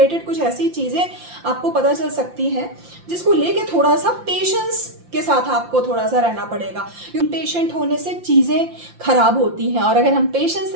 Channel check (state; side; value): late; left; 5.8 ms